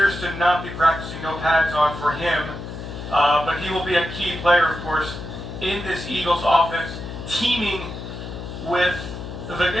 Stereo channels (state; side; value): noise; left; hum, 9 dB below the sound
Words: to not be practicing, no pads on for him, but he will be a key player, of course, in this Eagles offense, teaming with the